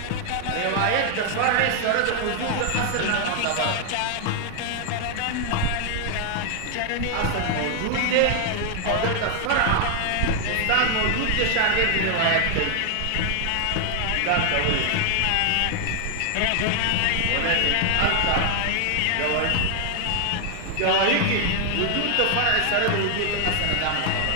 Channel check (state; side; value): different; both; correlation 0.00